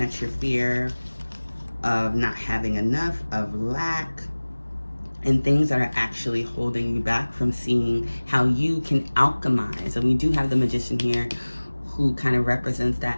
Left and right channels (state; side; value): inverted; both; correlation -1.00